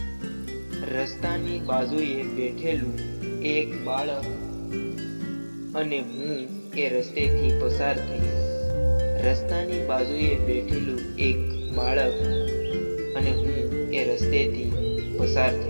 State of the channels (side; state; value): both; inverted; correlation -1.00